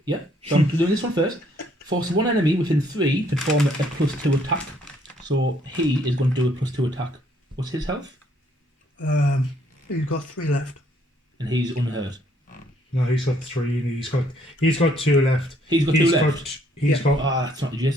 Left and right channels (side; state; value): both; normal; correlation 0.66